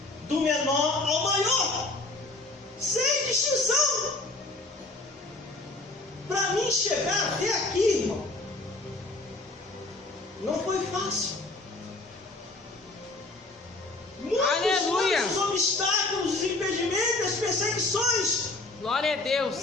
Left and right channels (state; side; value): quieter; right; 3.0 dB